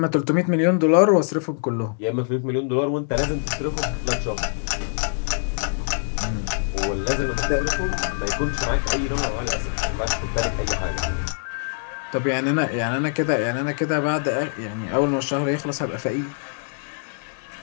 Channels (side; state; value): right; silent; digital silence